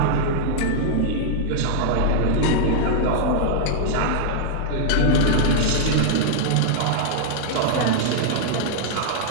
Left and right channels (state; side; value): different; both; correlation -0.01